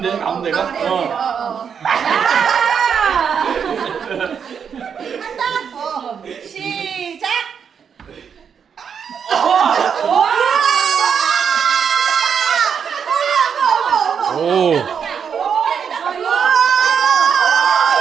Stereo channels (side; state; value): left; quieter; 7.2 dB